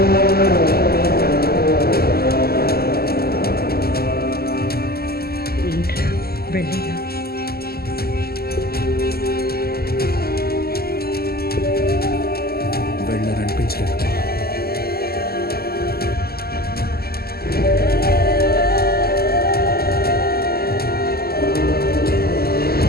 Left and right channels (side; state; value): right; late; 0.45 ms